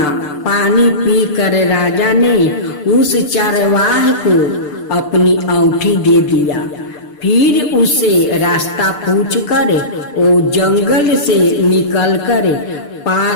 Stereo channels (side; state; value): right; late; 6.7 ms